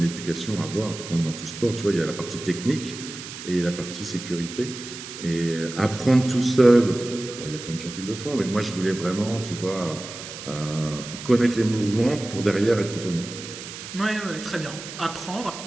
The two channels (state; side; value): noise; right; hiss, 11 dB below the sound